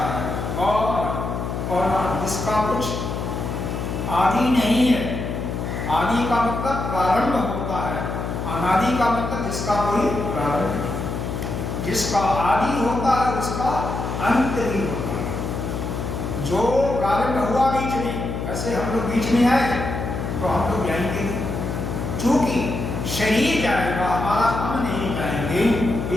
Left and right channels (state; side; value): noise; left; hum, 4 dB below the sound